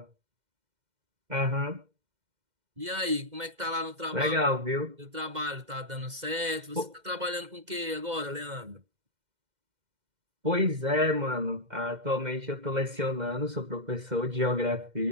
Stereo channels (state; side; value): late; left; 2.1 ms